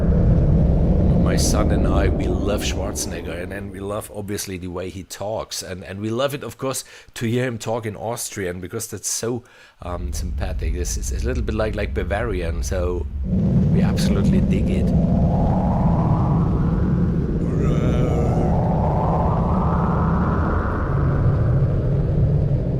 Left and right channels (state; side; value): identical; both; correlation 1.00